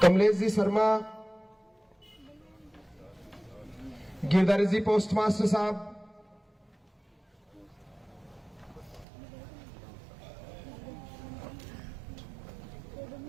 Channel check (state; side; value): drops out; left; at 9.1 s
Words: कमलेश जी शर्मा, गिरधारी जी पोस्टमास्टर साहब,